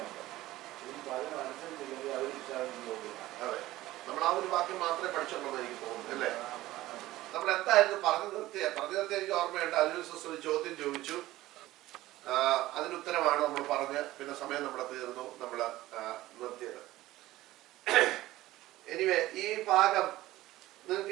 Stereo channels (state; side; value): quieter; left; 16.5 dB